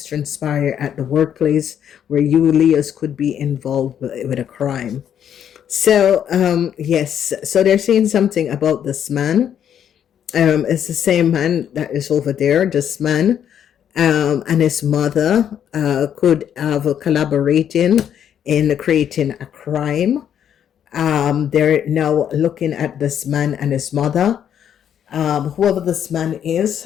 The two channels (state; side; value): quieter; right; 9.3 dB